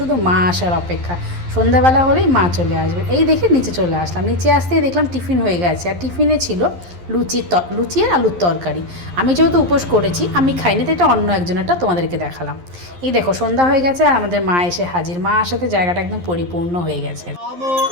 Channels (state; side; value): late; left; 11 ms